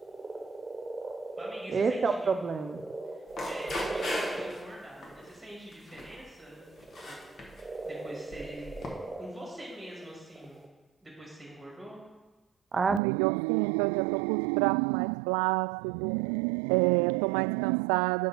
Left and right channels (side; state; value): left; drops out; at 13.0 s